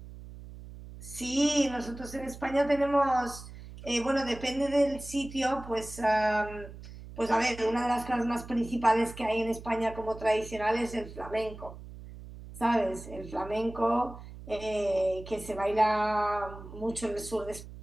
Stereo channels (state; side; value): noise; right; hum, 14 dB below the sound